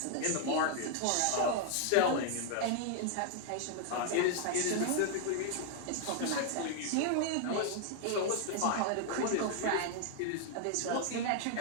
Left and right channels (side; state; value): both; different; correlation 0.00